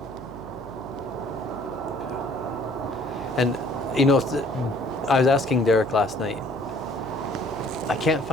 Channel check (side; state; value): right; noise; hum, 16 dB below the sound